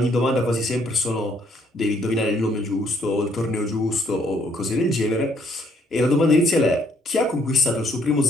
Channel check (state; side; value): normal; both; correlation 0.68